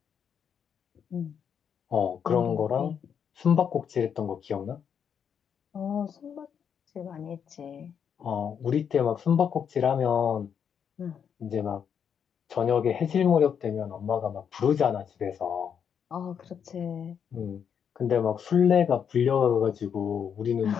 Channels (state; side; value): quieter; right; 7.7 dB